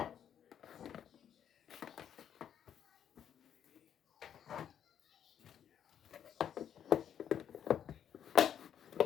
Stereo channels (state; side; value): quieter; right; 9.3 dB